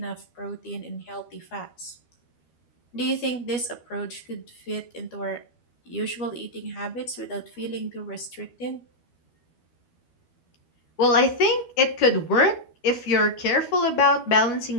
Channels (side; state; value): right; late; 12 ms